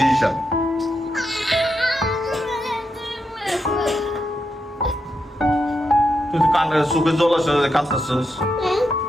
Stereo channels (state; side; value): normal; both; correlation 0.84